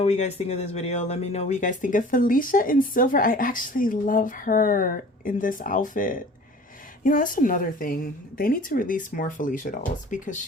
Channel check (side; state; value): both; normal; correlation 0.45